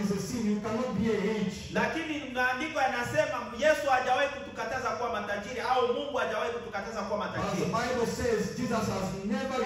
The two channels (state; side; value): identical; both; correlation 1.00